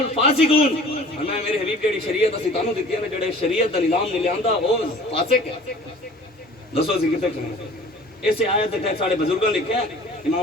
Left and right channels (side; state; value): both; normal; correlation 0.47